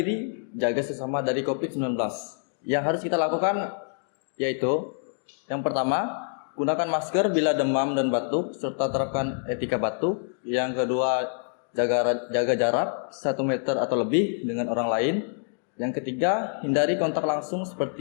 jaga sesama dari COVID-19. Yang harus kita lakukan yaitu yang pertama, gunakan masker bila demam dan batuk serta terapkan etika batuk. Yang kedua, jaga jarak 1 meter atau lebih dengan orang lain. Yang ketiga, hindari kontak langsung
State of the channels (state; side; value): silent; right; digital silence